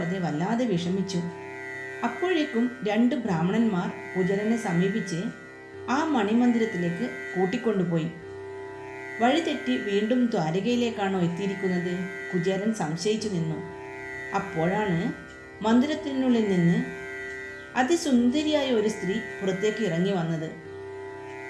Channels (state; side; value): identical; both; correlation 1.00